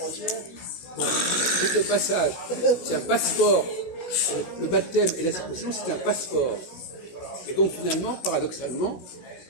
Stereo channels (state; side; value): late; right; 16 ms